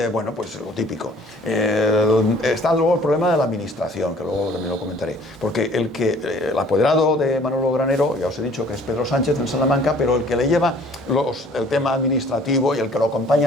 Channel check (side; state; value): both; normal; correlation 0.54